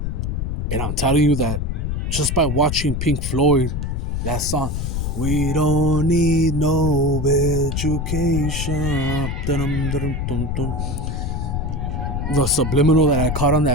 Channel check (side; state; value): left; noise; rumble, 2 dB below the sound